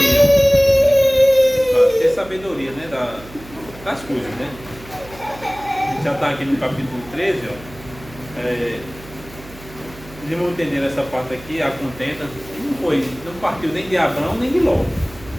Ter sabedoria, né? Das coisas, né? A gente já está aqui no capítulo 13, ó. Eles vão entender essa parte aqui, a contenta. Não partiu nem de Abrão nem de Ló.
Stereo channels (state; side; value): noise; right; hum, 19 dB below the sound